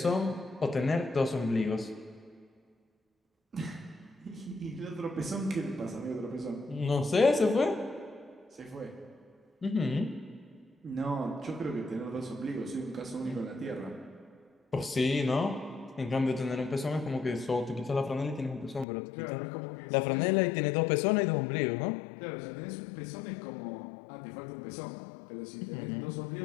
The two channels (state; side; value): drops out; right; at 18.9 s